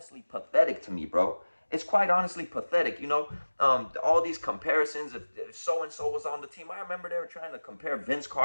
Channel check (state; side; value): inverted; both; correlation -1.00